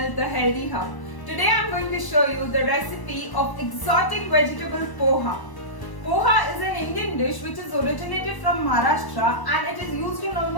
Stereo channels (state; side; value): late; right; 1.0 ms